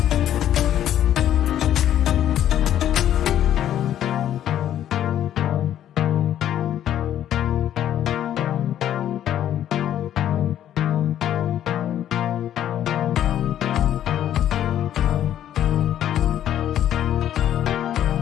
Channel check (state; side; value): quieter; right; 11.1 dB